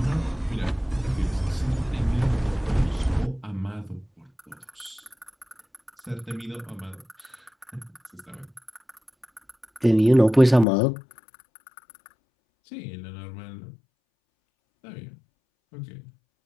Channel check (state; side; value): drops out; right; at 10.7 s